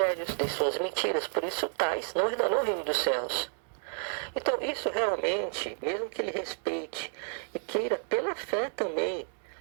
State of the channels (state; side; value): silent; left; 57 dB below the other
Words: de suas mentiras. Por isso tais não herdarão o reino dos céus. Então isso realmente, mesmo que ele respeite e queira pela fé também